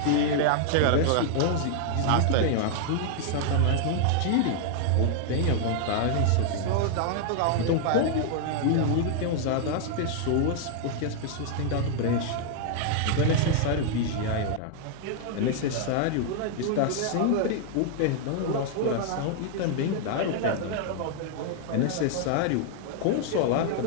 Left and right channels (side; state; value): both; different; correlation 0.00